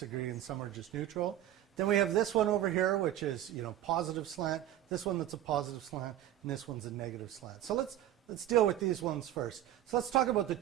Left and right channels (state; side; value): quieter; left; 12.3 dB